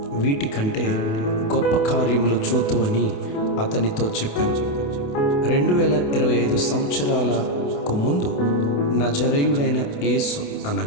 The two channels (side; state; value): right; late; 28 ms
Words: వీటికంటే గొప్ప కార్యములు చూతువని అతనితో చెప్పాను. 2025 సంవత్సరాలకు ముందు నజరేయుడైన యేసు